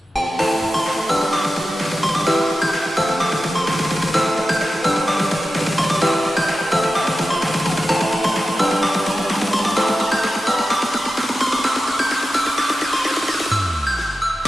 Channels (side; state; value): both; normal; correlation 0.92